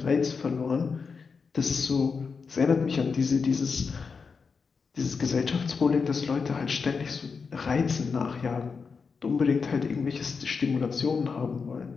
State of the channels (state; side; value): quieter; right; 5.2 dB